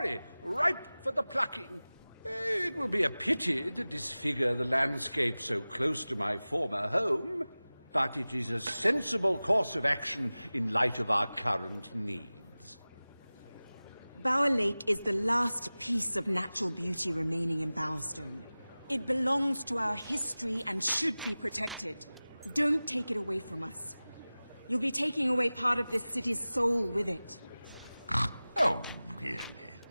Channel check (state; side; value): inverted; both; correlation -0.98